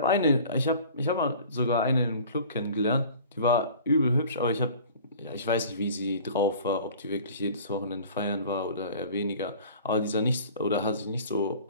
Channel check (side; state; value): both; inverted; correlation -0.45